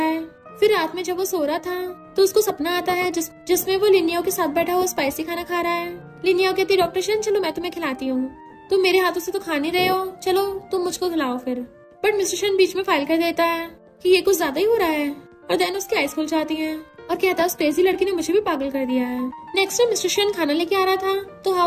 फिर रात में जब वो सो रहा था तो उसको सपना आता है जिसमें वो लिनियाओ के साथ बैठा हुआ स्पाइसी खाना खा रहा है। लिनियाओ कहती है डॉक्टर शन चलो मैं तुम्हें खिलाती हूँ, तुम मेरे हाथों से तो खा नहीं रहे हो, चलो तुम मुझको खिलाओ फिर। बट मिस्टर शन बीच में फाइल कर देता है कि ये कुछ ज्यादा ही हो रहा है, और देन उसकी आइज खुल जाती है और कहता है उस क्रेजी लड़की ने मुझे भी पागल कर दिया है। नेक्स्ट टाइम मिस्टर शन खाना लेके आ रहा था तो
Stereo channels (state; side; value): identical; both; correlation 1.00